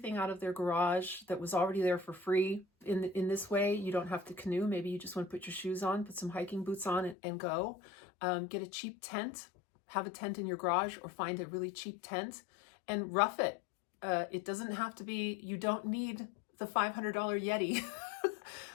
out of their garage that was already there for free. In this way, you don't have to canoe. Maybe you just want to put your shoes on, put some hiking boots on and go. Get a cheap tent, have a tent in your garage, or find a really cheap tent and rough it. It doesn't have to be, you don't need the $500 Yeti.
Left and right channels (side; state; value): right; drops out; at 7.2 s